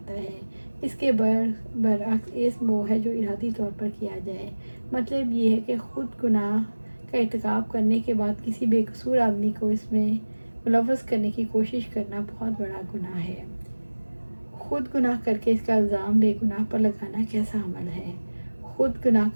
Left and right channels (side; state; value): both; inverted; correlation -1.00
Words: ہے۔ اس کے برعکس اسم وہ ہے جو ارادی طور پر کیا جائے۔ مطلب یہ ہے کہ خود گناہ کا ارتکاب کرنے کے بعد کسی بے قصور آدمی کو اس میں ملوث کرنے کی کوشش کرنا بہت بڑا گناہ ہے۔ خود گناہ کر کے اس کا الزام بے گناہ پر لگانا کیسا عمل ہے؟ خود گناہ